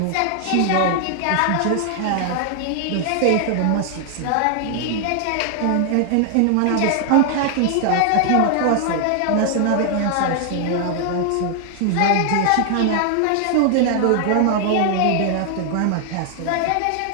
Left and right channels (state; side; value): different; both; correlation 0.00